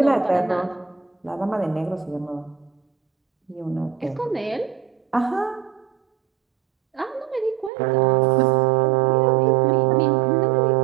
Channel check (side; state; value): left; drops out; at 7.7 s